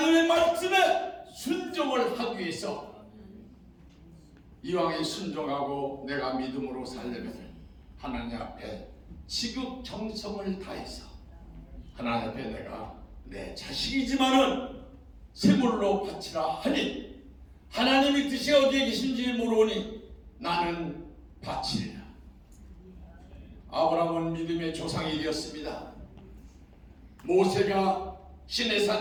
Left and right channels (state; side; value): identical; both; correlation 1.00